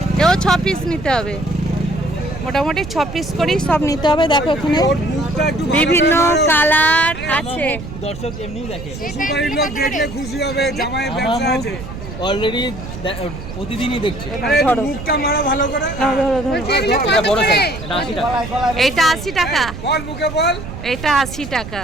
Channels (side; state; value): right; noise; rumble, 10 dB below the sound